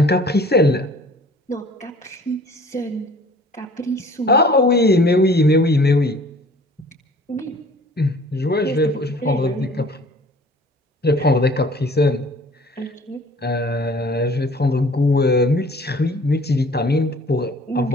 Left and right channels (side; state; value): both; normal; correlation 0.50